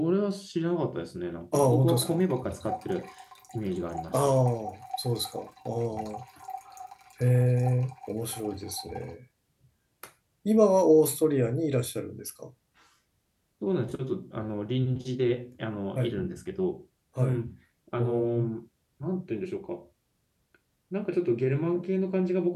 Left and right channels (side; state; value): both; identical; correlation 1.00